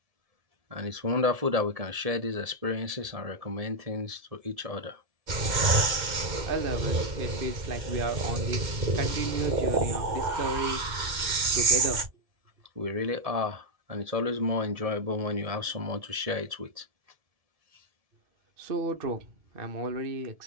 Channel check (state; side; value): late; left; 2.1 ms